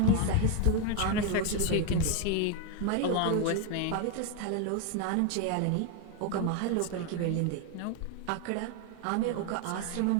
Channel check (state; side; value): different; both; correlation 0.01